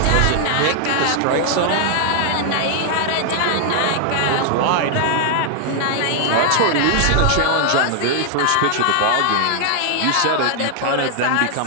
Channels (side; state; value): both; different; correlation 0.00